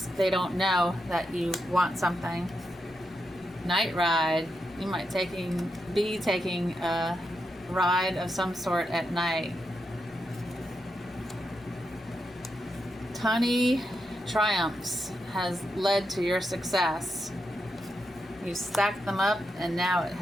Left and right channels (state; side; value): normal; both; correlation 0.85